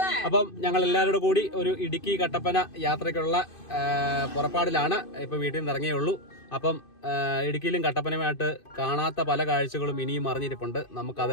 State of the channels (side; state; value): right; late; 2.5 ms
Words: അപ്പം ഞങ്ങൾ എല്ലാവരുടെ കൂടി ഒരു ഇടുക്കി കട്ടപ്പന യാത്രയ്ക്കുള്ള പുറപ്പാടിലാണ്. ഇപ്പൊ വീട്ടിൽ നിന്ന് ഇറങ്ങിയേ ഉള്ളൂ. അപ്പം ഇടുക്കിയിലും കട്ടപ്പനയുമായിട്ട് കാണാത്ത പല കാഴ്ചകളും ഇനിയും അറിഞ്ഞിരിപ്പുണ്ട്.